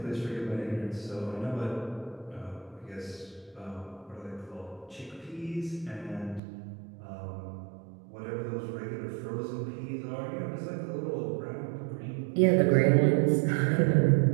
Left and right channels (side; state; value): left; drops out; at 6.4 s